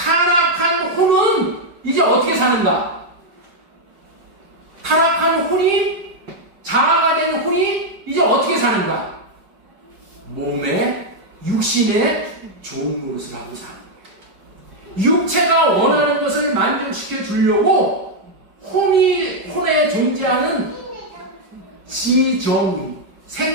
혼은 이제 어떻게 사는가? 타락한 혼이 자아가 된 혼이 이제 어떻게 사는가? 몸에 육신의 좋은 노릇을 하고 사는 거예요. 육체가 원하는 것을 만족시켜 주려고 혼에 존재하는 지정,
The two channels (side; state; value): left; late; 5.1 ms